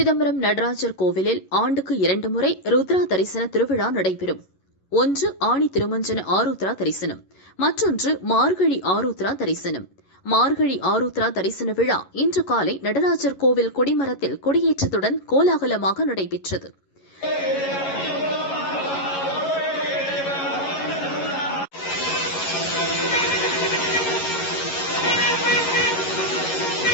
நடராஜர் கோவிலில் ஆண்டுக்கு 2 முறை ருத்ரா தரிசன திருவிழா நடைபெறும். ஒன்று ஆணி திருமஞ்சன ஆருத்ரா தரிசனம், மற்றொன்று மார்கழி ஆருத்ரா தரிசனம். மார்கழி ஆருத்ரா தரிசன விழா இன்று காலை நடராஜர் கோவில் கொடிமரத்தில் கொடியேற்றத்துடன் கோலாகலமாக நடைபெற்றது.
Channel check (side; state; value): right; late; 11 ms